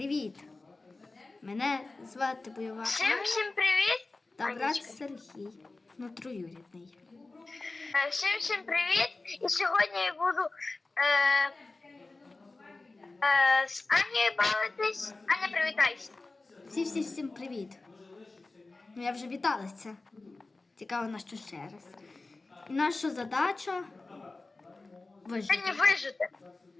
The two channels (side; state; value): right; quieter; 3.4 dB